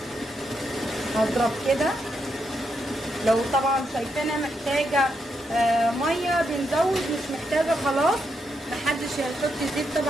هضرب كده. لو طبعا شايفينها محتاجة مية بنزود، مش محتاجة خلاص محدش هيحط زيت.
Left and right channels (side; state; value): both; normal; correlation 0.81